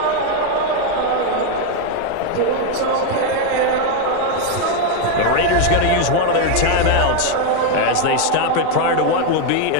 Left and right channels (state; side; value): different; both; correlation 0.01